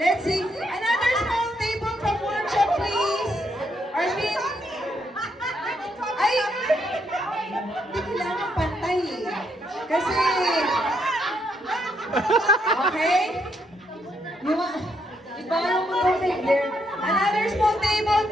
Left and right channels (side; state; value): both; normal; correlation 0.76